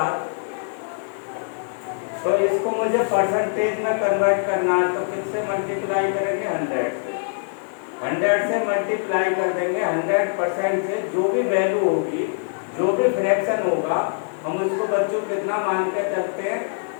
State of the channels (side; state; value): right; silent; digital silence